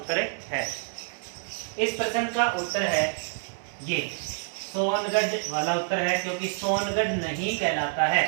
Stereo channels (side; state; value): left; silent; 60 dB below the other